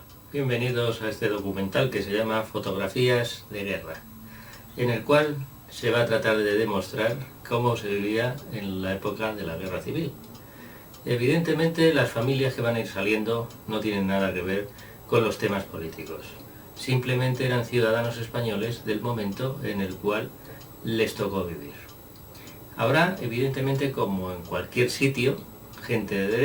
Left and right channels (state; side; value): identical; both; correlation 1.00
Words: bienvenidos a este documental que se llama Fotografías de Guerra, en el cual se va a tratar de demostrar cómo se vivía en la época de la Guerra Civil. Evidentemente, las familias que van a ir saliendo no tienen nada que ver con los temas políticos. Simplemente eran ciudadanos españoles del momento en el cual les tocó vivir. Habrá, evidentemente, como en cualquier sitio, gente de